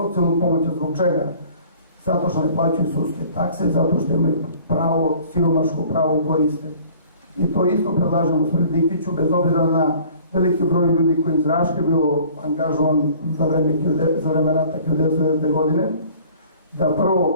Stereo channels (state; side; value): inverted; both; correlation -0.51